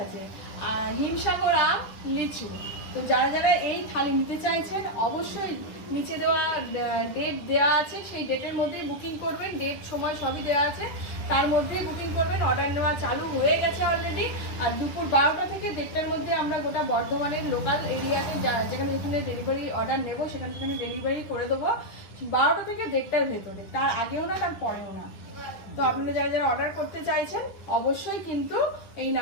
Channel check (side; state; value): right; late; 10 ms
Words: আছে, হিমসাগর আম, লিচু। তো যারা যারা এই থালি নিতে চাইছেন অবশ্যই নিচে দেওয়া ডেট দেওয়া আছে, সেই ডেটের মধ্যেই বুকিং করবেন। ডেট সময় সবই দেওয়া আছে, তার মধ্যেই বুকিং করবেন। অর্ডার নেওয়া চালু হয়ে গেছে অলরেডি। আর দুপুর 12টা থেকে 1:30টার মধ্যে আমরা গোটা বর্ধমানের লোকাল এরিয়াতে যেখানে যেখানে ডেলিভারি অর্ডার নেব সেখানে সেখানে ডেলিভারি করে দেবো 12টা থেকে 1:30টার ভেতরে, তার আগেও না তার পরেও না। তো আপনারা যারা যারা অর্ডার করতে চাইছেন অবশ্যই কিন্তু এই